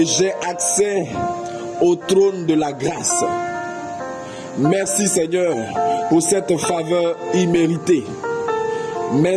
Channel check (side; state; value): both; identical; correlation 1.00